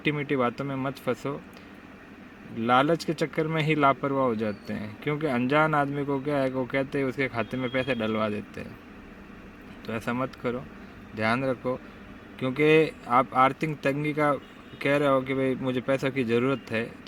मीठी बातों में मत फंसो। लालच के चक्कर में ही लापरवाह हो जाते हैं, क्योंकि अनजान आदमी को क्या है, वो कहते हैं उसके खाते में पैसे डलवा देते हैं। तो ऐसा मत करो, ध्यान रखो। क्योंकि आप आर्थिक तंगी का कह रहे हो कि भाई मुझे पैसों की ज़रूरत है,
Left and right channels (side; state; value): both; identical; correlation 1.00